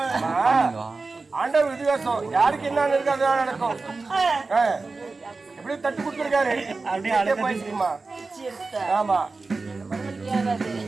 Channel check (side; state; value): left; quieter; 3.8 dB